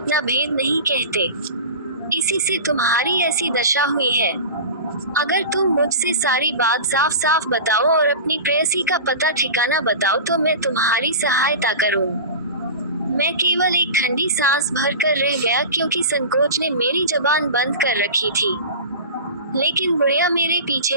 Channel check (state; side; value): inverted; both; correlation -0.31